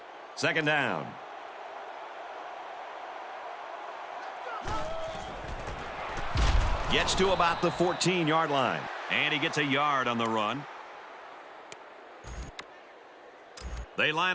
Second down. Gets to about the 14-yard line. And he gets a yard on the run. They line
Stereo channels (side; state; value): both; identical; correlation 1.00